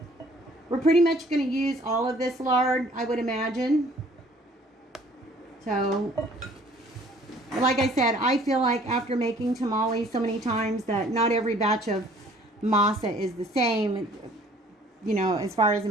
We're pretty much going to use all of this lard, I would imagine. So, like I said, I feel like after making tamales so many times that not every batch of masa is the same, you know, as far as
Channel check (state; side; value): normal; both; correlation 0.56